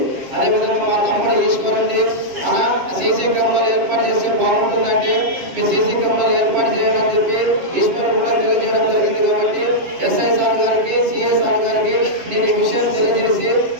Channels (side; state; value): left; late; 7.5 ms